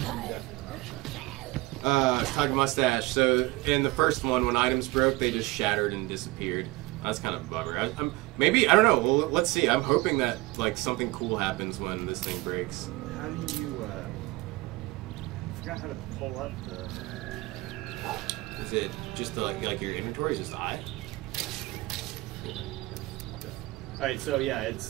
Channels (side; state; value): left; quieter; 21.2 dB